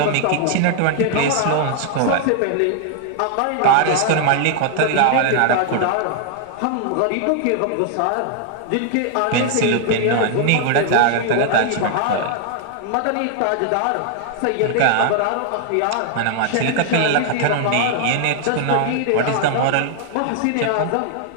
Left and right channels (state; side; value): different; both; correlation 0.00